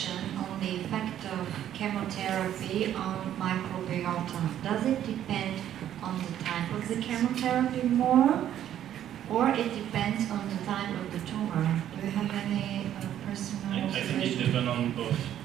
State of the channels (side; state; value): left; quieter; 11.0 dB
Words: on the effect of chemotherapy on microbiota? Does it depend on the type of the chemotherapy more, or it depends on the type of the tumor? Do you have any personal observation? I think it depends on both.